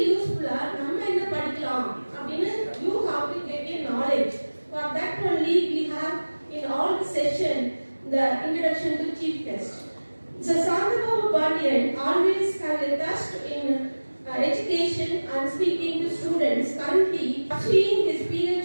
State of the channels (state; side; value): inverted; both; correlation -1.00